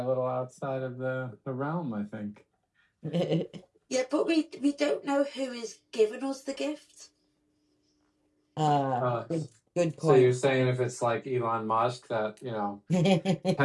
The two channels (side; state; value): both; identical; correlation 1.00